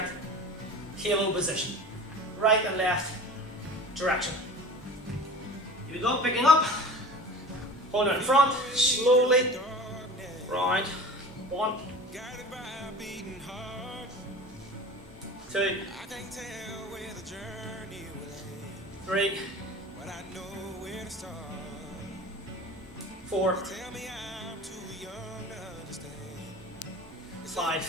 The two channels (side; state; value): both; normal; correlation 0.38